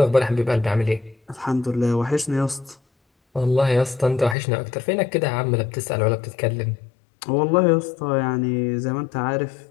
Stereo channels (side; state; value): right; drops out; at 4.4 s